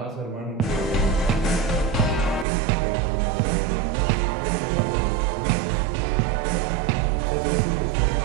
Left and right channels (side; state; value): left; drops out; at 2.5 s